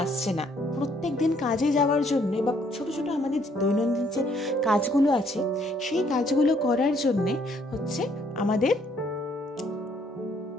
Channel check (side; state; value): both; normal; correlation 0.66